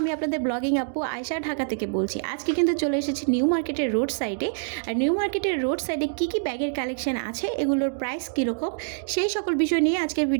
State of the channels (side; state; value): left; silent; digital silence